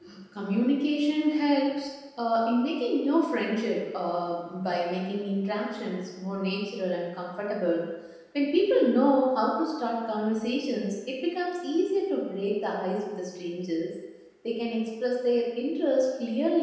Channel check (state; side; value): identical; both; correlation 1.00